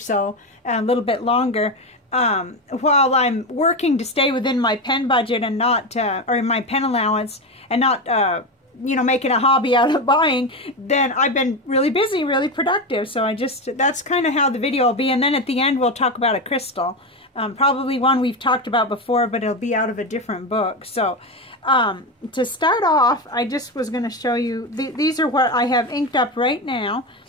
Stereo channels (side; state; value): both; normal; correlation 0.16